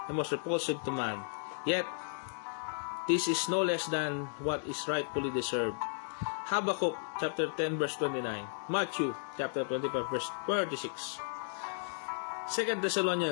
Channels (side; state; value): right; silent; digital silence